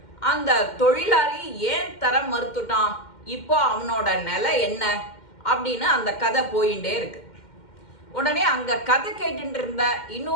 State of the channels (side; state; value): right; late; 2.1 ms